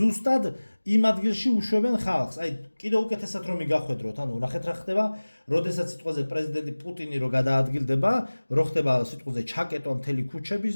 იმ ადგილში უშვებენ ხალხს. აი კიდევ უკეთესად რომ მიგახვედროთ, ანუ ნახეთ რა ხდება, როდესაც სიტყვაზე პრეზიდენტი პუტინი რო გადაადგილდება, რო ხდება სიტყვაზე ჩაკეტვა მთელი ქუჩების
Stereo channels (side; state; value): both; inverted; correlation -1.00